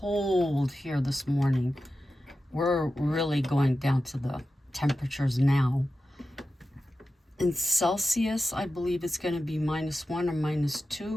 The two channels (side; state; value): both; normal; correlation 0.92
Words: here this morning. We're really going down to the temperatures now. In Celsius, I believe it's going to be -1 or